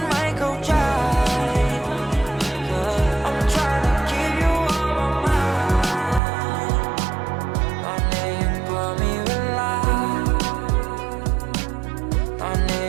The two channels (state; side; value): drops out; left; at 6.2 s